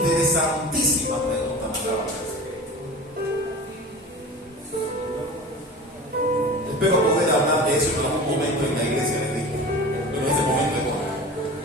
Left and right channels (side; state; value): both; normal; correlation 0.35